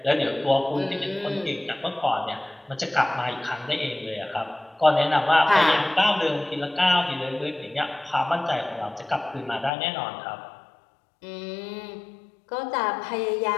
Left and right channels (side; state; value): right; drops out; at 9.7 s